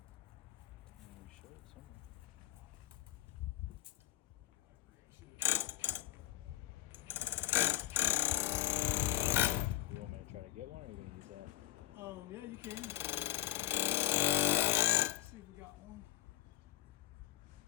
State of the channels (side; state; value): right; quieter; 15.7 dB